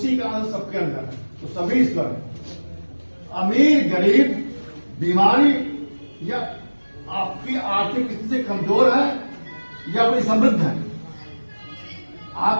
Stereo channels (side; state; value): both; inverted; correlation -1.00